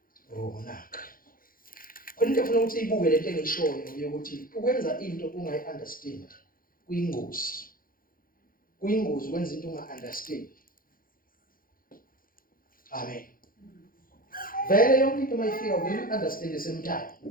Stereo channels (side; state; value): right; late; 0.41 ms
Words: Oh naka. Khona into ufuna ukuthi ibuke lento engishoyo ukuthi ukwenza into ungayi-understand kuyingozi. Kuyingozi ukwenza into unga-understand. Amen. Vele yonke into mayifika vele understand the same time.